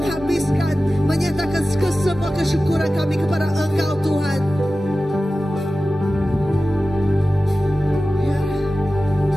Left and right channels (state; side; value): normal; both; correlation 0.95